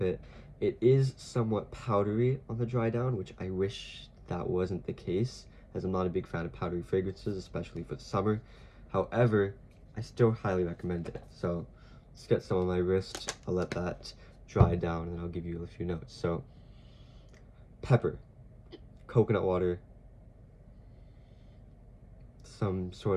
It is somewhat powdery on the dry down, which I wish that wasn't the case, as I'm not a big fan of powdery fragrances, especially for the summer. However, I still highly recommend it. So let's get some on my wrist. I'll let that dry down and I'll give you a few notes. So pepper, coconut water, some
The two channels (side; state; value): both; identical; correlation 1.00